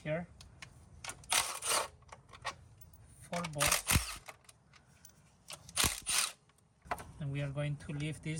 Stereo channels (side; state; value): both; identical; correlation 1.00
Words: here, 4 bolts. And we are going to leave